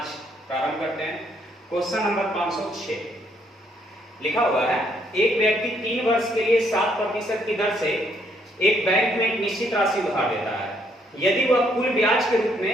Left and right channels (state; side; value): normal; both; correlation 0.70